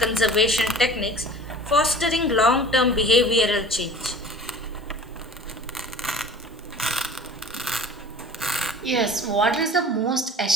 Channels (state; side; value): normal; both; correlation 0.43